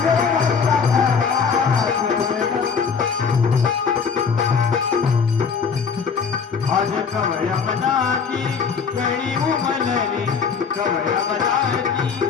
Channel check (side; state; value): right; quieter; 6.0 dB